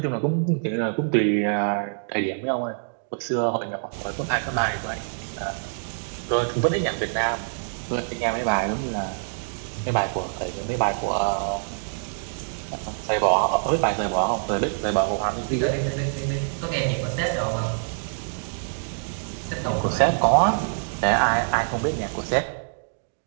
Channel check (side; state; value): left; silent; digital silence